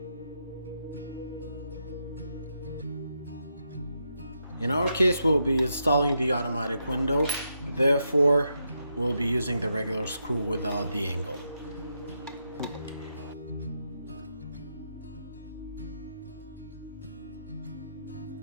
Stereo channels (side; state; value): both; inverted; correlation -0.82